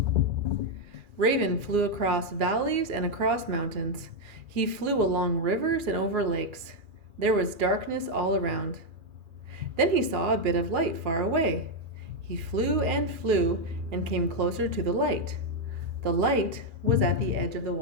Raven flew across valleys and across mountains. He flew along rivers and over lakes. There was darkness all around. Then he saw a bit of light far away. He flew and came closer to the light. The light was at the edge of the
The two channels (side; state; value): left; late; 2.4 ms